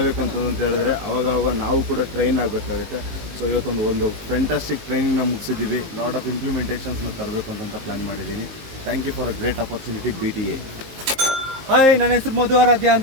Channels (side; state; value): left; late; 19 ms